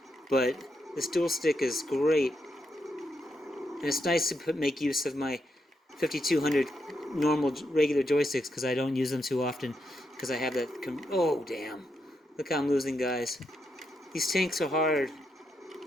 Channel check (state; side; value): normal; both; correlation 0.82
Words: But this dual stick is great. And it's nice to make use of my 5200 normal, regular joysticks, because I don't use them too often, because I have that... Oh, damn. Look how I'm losing, guys. These tanks are hard.